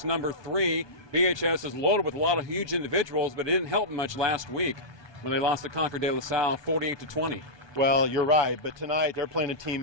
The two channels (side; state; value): right; late; 1.2 ms